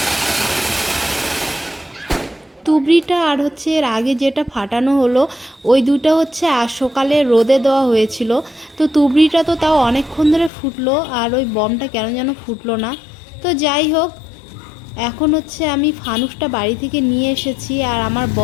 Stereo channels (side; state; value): right; drops out; at 10.5 s